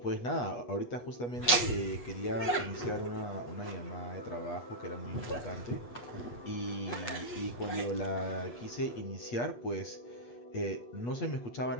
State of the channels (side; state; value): right; late; 8.1 ms